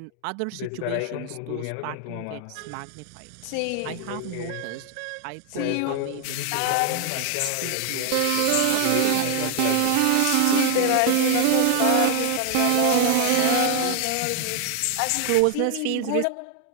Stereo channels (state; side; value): different; both; correlation 0.00